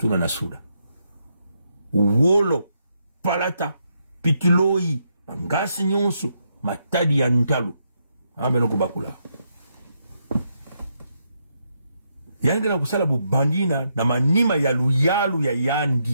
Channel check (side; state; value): both; inverted; correlation -0.79